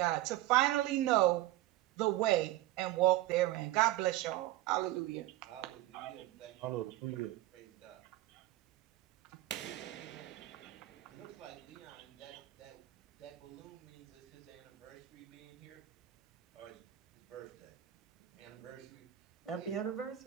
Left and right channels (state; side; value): quieter; left; 15.5 dB